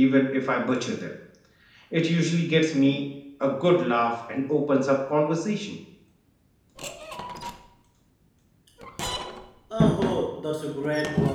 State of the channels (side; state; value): both; identical; correlation 1.00